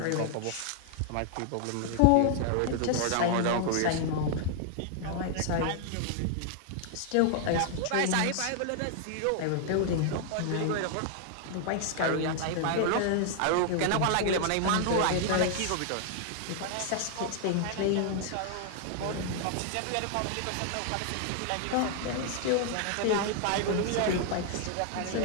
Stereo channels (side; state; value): both; different; correlation 0.00